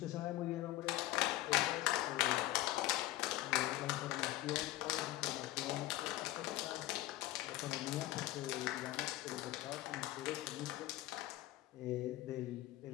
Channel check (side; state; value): right; quieter; 16.0 dB